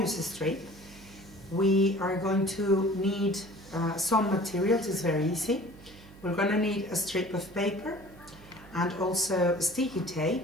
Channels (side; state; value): right; noise; hum, 20 dB below the sound